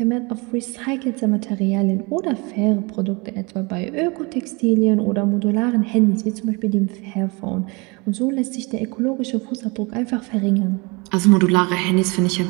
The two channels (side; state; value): left; quieter; 27.8 dB